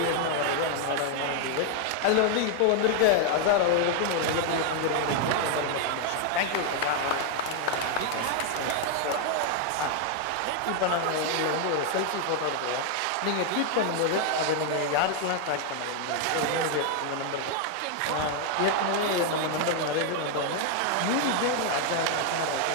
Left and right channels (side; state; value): both; different; correlation 0.00